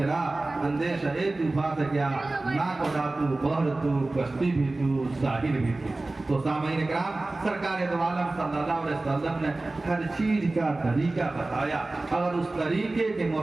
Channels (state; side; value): quieter; left; 3.0 dB